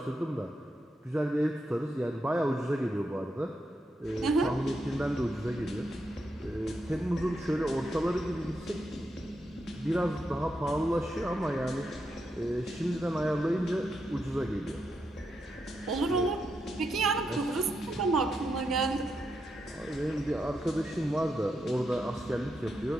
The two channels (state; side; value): normal; both; correlation 0.84